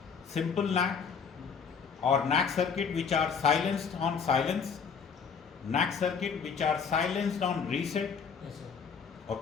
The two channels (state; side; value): quieter; right; 6.1 dB